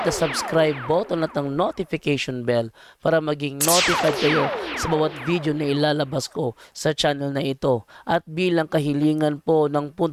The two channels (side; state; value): both; identical; correlation 1.00